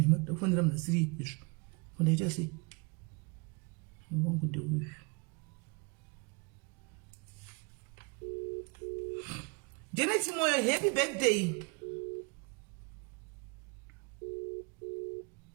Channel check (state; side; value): quieter; left; 31.0 dB